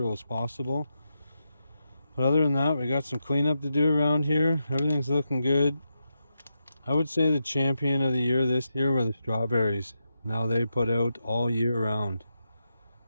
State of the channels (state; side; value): inverted; both; correlation -0.85